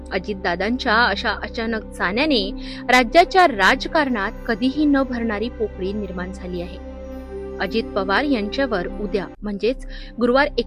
अजितदादांच्या अशा अचानक जाण्याने राज्याच्या राजकारणात कधीही न भरणारी पोकळी निर्माण झाली आहे। अजित पवार यांच्यावर उद्या म्हणजेच गुरुवार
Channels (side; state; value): both; identical; correlation 1.00